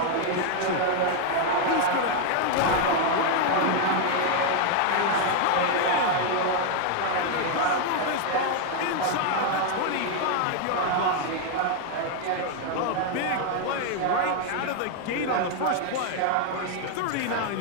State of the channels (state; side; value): different; both; correlation 0.00